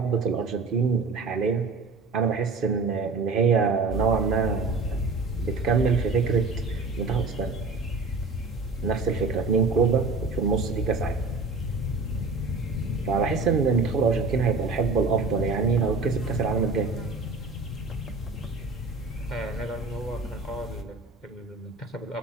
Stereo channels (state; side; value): quieter; left; 3.8 dB